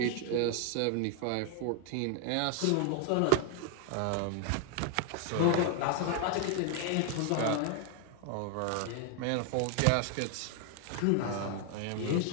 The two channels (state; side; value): different; both; correlation 0.00